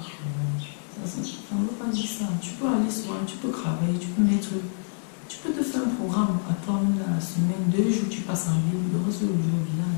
Ça ne veut pas dire ça. Tu peux aller souvent, tu peux travailler, tu peux te faire un programme à toi la semaine, 2 jours tu passes en ville, le reste du jour au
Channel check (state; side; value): silent; right; digital silence